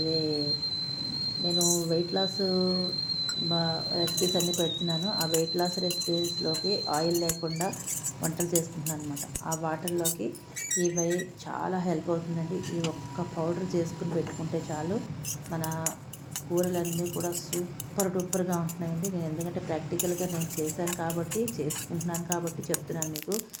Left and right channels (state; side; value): identical; both; correlation 1.00